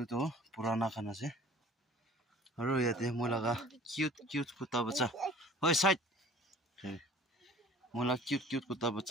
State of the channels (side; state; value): both; normal; correlation 0.48